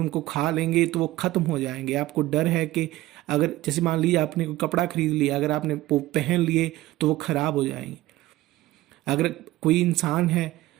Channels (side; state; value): left; quieter; 17.1 dB